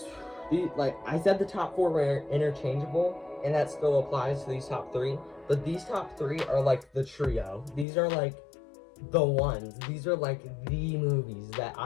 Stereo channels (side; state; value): right; drops out; at 7.9 s